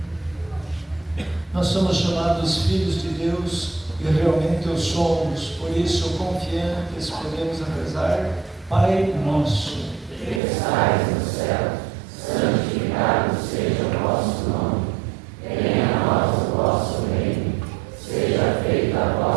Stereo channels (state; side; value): drops out; left; at 10.4 s